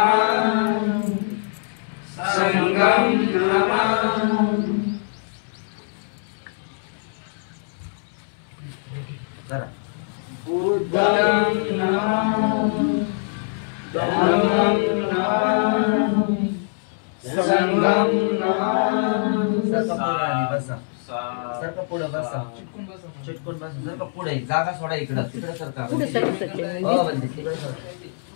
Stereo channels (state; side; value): silent; right; 63 dB below the other